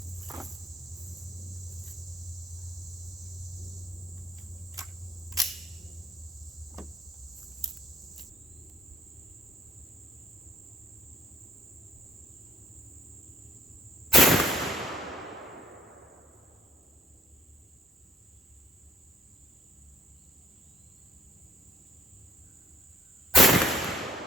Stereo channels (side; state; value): both; normal; correlation 0.63